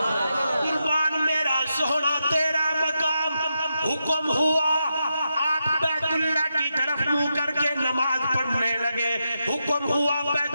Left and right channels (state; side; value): inverted; both; correlation -0.85